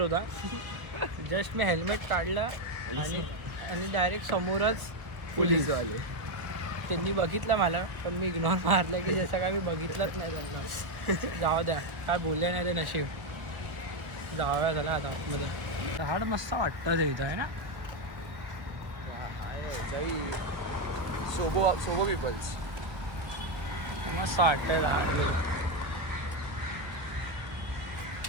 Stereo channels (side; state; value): left; late; 1.2 ms